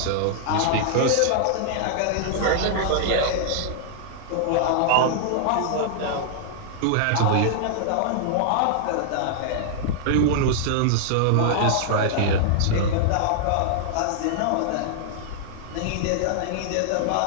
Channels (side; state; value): both; different; correlation -0.01